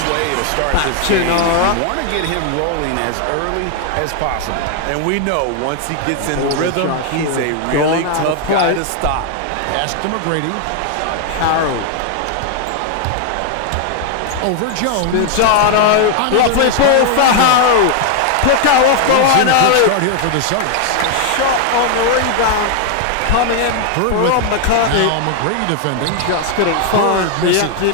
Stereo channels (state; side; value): different; both; correlation 0.00